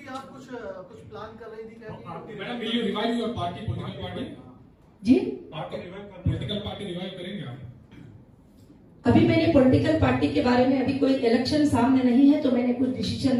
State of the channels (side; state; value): both; identical; correlation 1.00